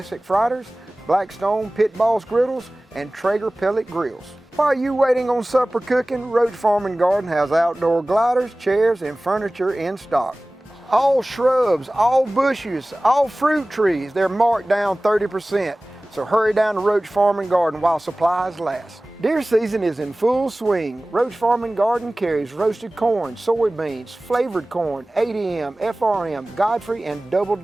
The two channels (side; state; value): both; normal; correlation 0.98